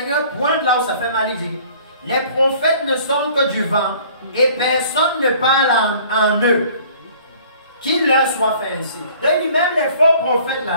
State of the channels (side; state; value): both; inverted; correlation -0.53